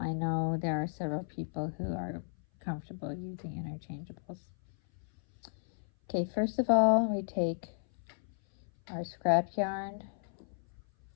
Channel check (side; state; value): right; silent; 55 dB below the other